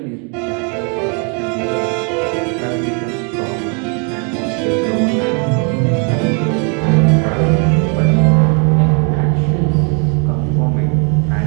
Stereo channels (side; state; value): left; quieter; 37.4 dB